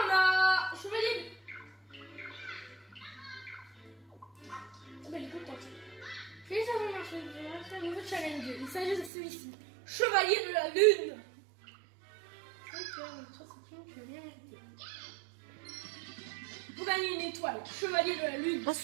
on a... Chevalier... Ah, bah, elle est contente. Félicitations, c'est un nouveau challenge. Il s'agit de celui-ci. Chevalier de la Lune. Vous gagnez une étoile. Chevalier de la Lune. Ah,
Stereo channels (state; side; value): drops out; left; at 9.1 s